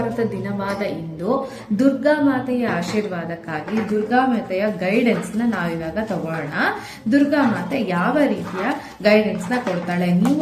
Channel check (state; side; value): identical; both; correlation 1.00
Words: ದಿನವಾದ ಇಂದು ದುರ್ಗಾ ಮಾತೆಯ ಆಶೀರ್ವಾದಕ್ಕಾಗಿ ದುರ್ಗಾ ಮಾತೆಯ ಗೈಡೆನ್ಸ್ ನ ನಾವಿವಾಗ ತಗೊಳ್ಳೋಣ. ದುರ್ಗಾ ಮಾತೆ ಯಾವ ರೀತಿಯ ಗೈಡೆನ್ಸ್ ನ ಕೊಡ್ತಾಳೆ,